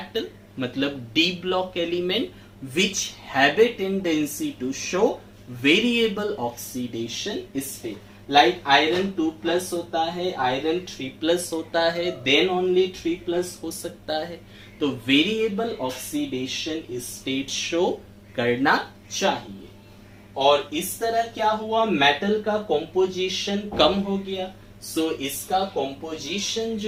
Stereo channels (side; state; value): both; identical; correlation 1.00